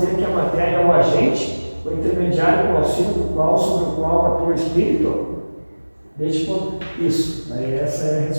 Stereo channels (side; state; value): both; inverted; correlation -1.00